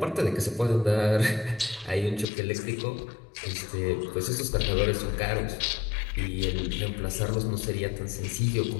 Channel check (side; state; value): right; drops out; at 2.2 s